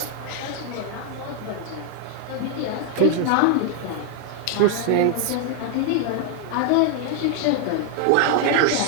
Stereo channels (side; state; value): both; different; correlation 0.00